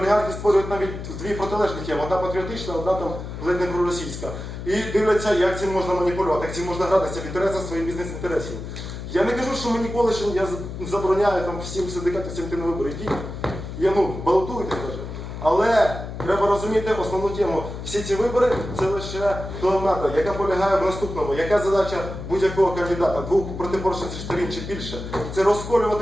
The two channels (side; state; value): left; noise; hum, 8 dB below the sound